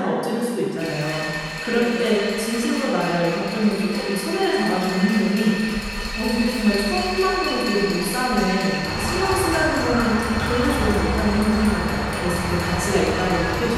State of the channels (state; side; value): identical; both; correlation 1.00